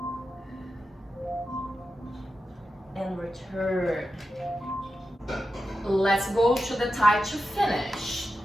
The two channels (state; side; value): normal; both; correlation 0.90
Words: And return. Let's go to the thigh to finish.